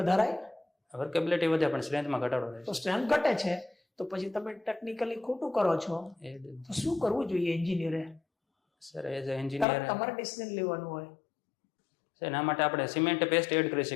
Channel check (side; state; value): right; drops out; at 9.7 s